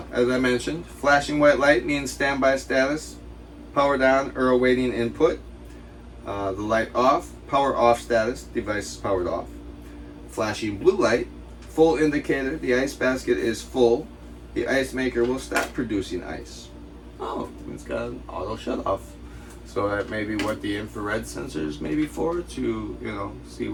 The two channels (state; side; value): identical; both; correlation 1.00